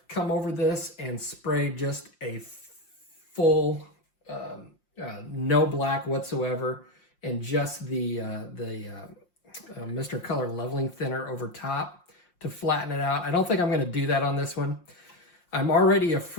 come over this and sprayed just a full, no black whatsoever, and just the Mr. Color Leveling Thinner over top to flatten it out. I don't think I'm going to do that on this one. I'm already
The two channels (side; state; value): right; late; 5.7 ms